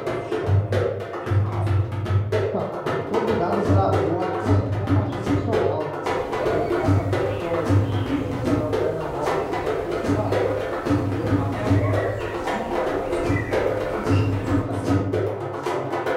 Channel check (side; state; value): both; identical; correlation 1.00